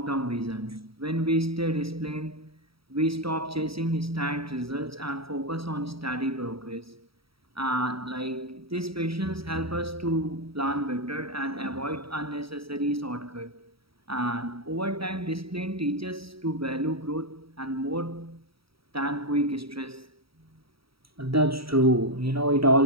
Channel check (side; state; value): left; late; 0.75 ms